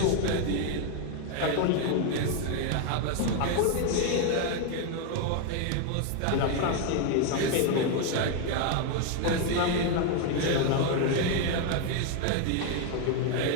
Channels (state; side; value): different; both; correlation 0.01